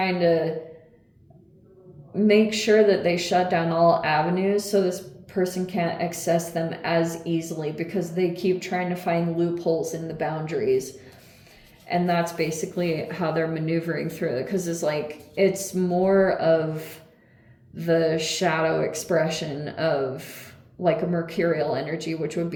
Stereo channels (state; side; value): identical; both; correlation 1.00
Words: to make sure that they shut down all avenues so this person can't access them as easily, because they keep trying to find loopholes in the boundaries. And that's basically how they're maneuvering through it, because it's like, it's more of the shadow expression of like a mercurial energy, which would